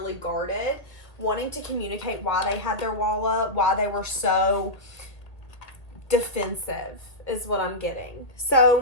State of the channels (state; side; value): late; right; 1.5 ms